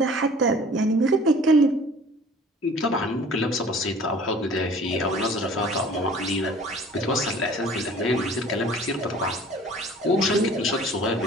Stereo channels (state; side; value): normal; both; correlation 0.48